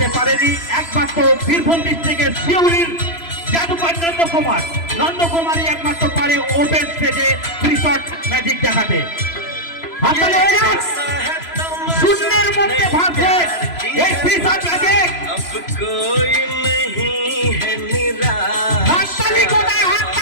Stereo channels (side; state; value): right; late; 3.0 ms